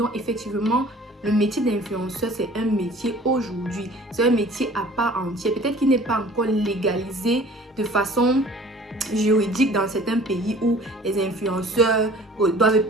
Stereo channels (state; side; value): normal; both; correlation 0.48